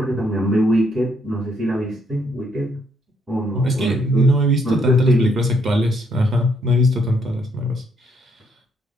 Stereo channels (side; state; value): both; normal; correlation 0.72